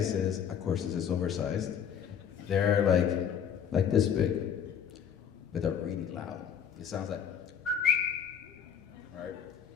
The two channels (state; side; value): quieter; right; 8.0 dB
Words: is, of course, this is oversized. They're like this big, but they're really loud. It sounds like, right?